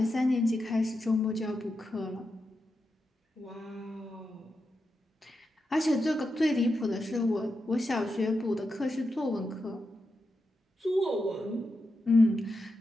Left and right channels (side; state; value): both; normal; correlation 0.88